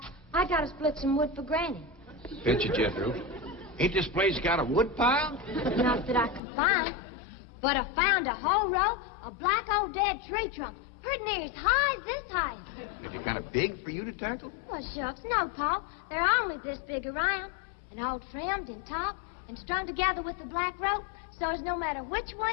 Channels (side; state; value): right; drops out; at 6.4 s